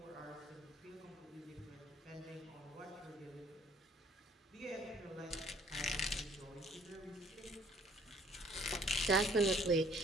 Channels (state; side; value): normal; both; correlation 0.58